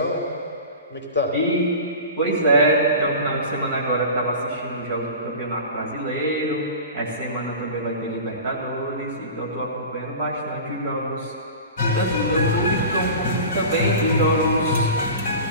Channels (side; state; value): both; inverted; correlation -0.35